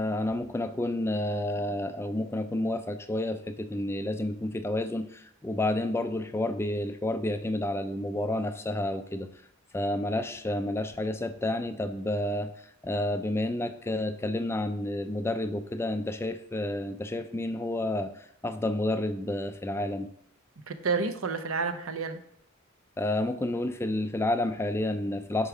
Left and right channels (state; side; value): normal; both; correlation 0.69